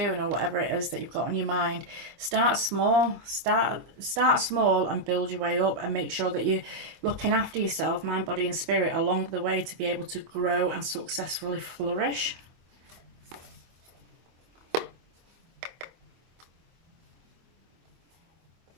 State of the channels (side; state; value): left; late; 25 ms